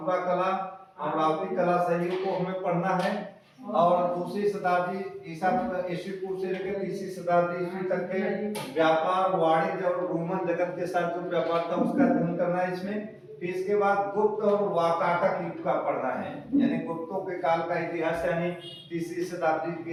कला, अमरावती कला शैलियों को हमें पढ़ना है। और दूसरी शताब्दी ईसा पूर्व से लेकर तीसरी शताब्दी ईस्वी तक के व्यापार, वाणिज्य और रोमन जगत के साथ जो व्यापार था उसका अध्ययन करना है इसमें। फिर इसके बाद गुप्त और वाकाटक युग का पढ़ना है यानी गुप्तों के काल का इतिहास यानी तीसरी शताब्दी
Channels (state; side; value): identical; both; correlation 1.00